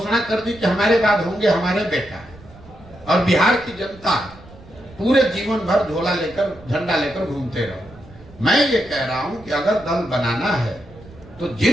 कर दी कि हमारे बाद होंगे हमारे बेटा, और बिहार की जनता पूरे जीवन भर झोला लेकर झंडा लेकर घूमते रहो। मैं ये कह रहा हूं कि अगर दल बनाना है तो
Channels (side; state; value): right; noise; rumble, 21 dB below the sound